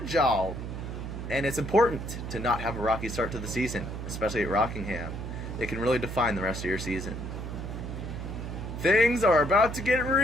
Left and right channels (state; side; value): noise; right; hum, 6 dB below the sound